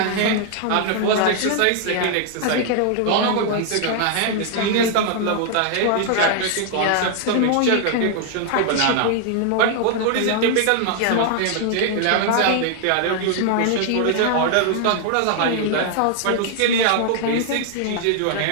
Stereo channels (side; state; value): both; different; correlation 0.00